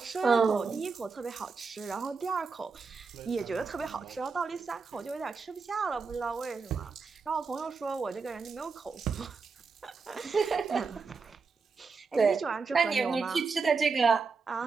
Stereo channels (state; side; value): quieter; left; 4.8 dB